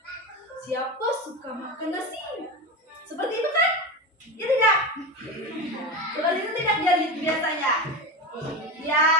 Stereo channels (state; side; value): normal; both; correlation 0.21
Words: Siapa suka makan nasi? Seperti itu kan? Ya tidak? Seperti itu tidak jadi biasanya? Ya.